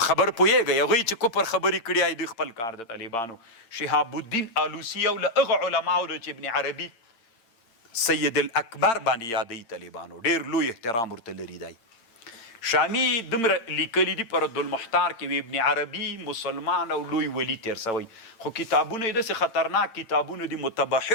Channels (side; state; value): right; late; 8.8 ms